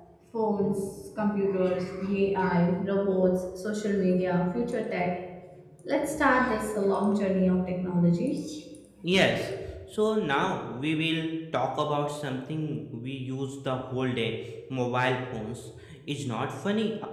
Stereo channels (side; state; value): both; identical; correlation 1.00